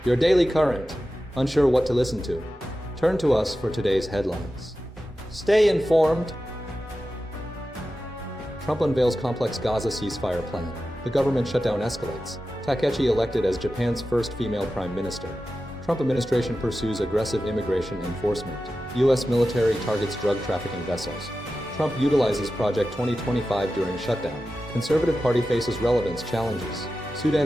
your daily current. Unsure what to listen to? Turn to us for today's headlines. Stay informed. Trump unveils complex Gaza ceasefire plan. The government shutdown escalates. Takaichi elected as Japan's first female prime minister. Trump administration pursues aggressive immigration enforcement. U.S. military targets drug trafficking vessels. Trump utilizes Project 2025 during shutdown. Conservative Party faces relevance challenges.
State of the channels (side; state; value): both; normal; correlation 0.93